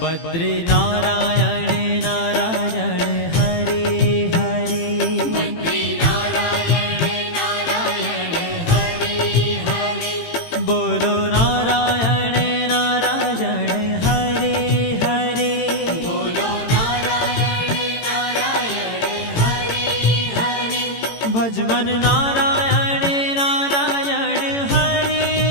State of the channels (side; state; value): right; late; 18 ms